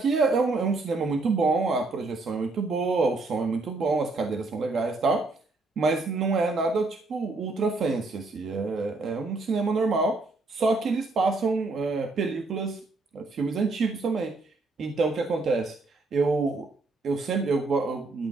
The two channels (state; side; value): quieter; left; 3.4 dB